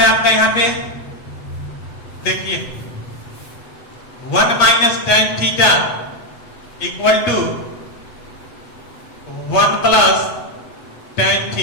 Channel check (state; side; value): late; right; 7.9 ms